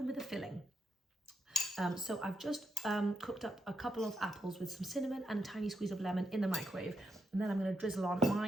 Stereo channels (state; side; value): normal; both; correlation 0.82